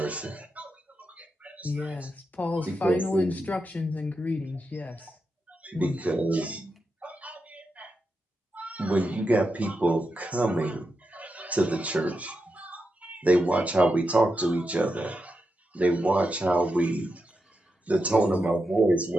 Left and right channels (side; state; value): both; normal; correlation 0.87